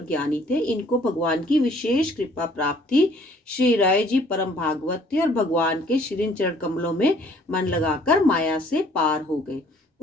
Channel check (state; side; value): normal; both; correlation 0.58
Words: ज्ञानी थे। इनको भगवान की विशेष कृपा प्राप्त थी। श्री राय जी परम भागवत थे और भगवान के श्री चरण कमलों में मन लगाकर माया से पार हो गए।